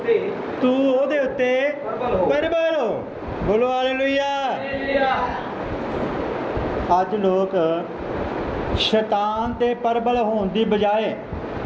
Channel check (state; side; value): identical; both; correlation 1.00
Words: ਉੱਤੇ ਪਰਬਲ ਹੋ। ਬੋਲੋ ਹਾਲੇਲੂਇਆ। ਅੱਜ ਲੋਕ ਸ਼ੈਤਾਨ ਤੇ ਪਰਬਲ ਹੋਣ ਦੀ ਬਜਾਏ,